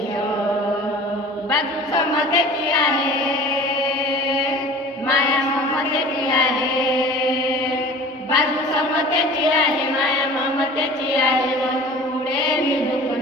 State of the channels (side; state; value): both; normal; correlation 0.42